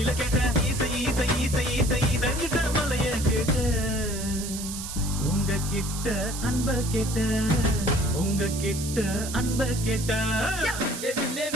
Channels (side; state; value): right; noise; hiss, 8 dB below the sound